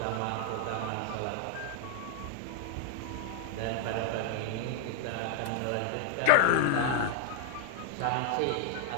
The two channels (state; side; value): different; both; correlation 0.00